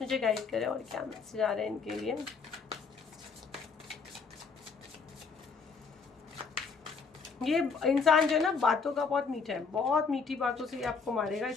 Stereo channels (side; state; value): right; quieter; 5.1 dB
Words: मुझे गाइड करें, और क्या मैसेज आ रहे हैं इनके लिए। ये इंसान जो है ना, बातों का बहुत मीठा है, बहुत मीठी बातों से ये आपको मारेगा,